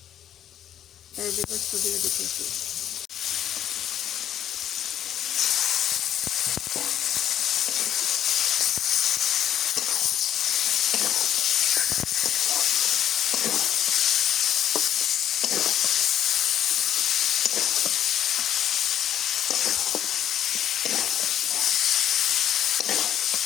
এই যে গোস্ত দিয়ে দিতেছি।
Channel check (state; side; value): quieter; right; 10.6 dB